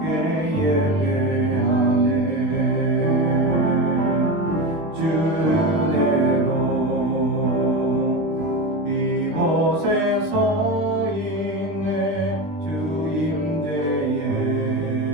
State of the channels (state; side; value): late; left; 19 ms